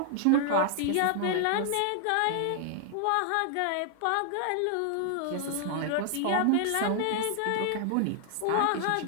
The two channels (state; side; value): different; both; correlation 0.00